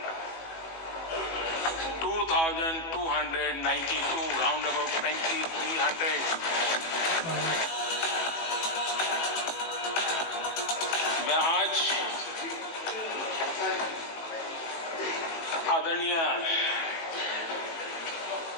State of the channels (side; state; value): right; late; 18 ms